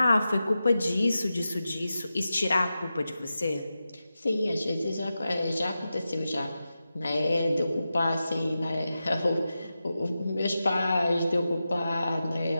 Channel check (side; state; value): both; inverted; correlation -0.92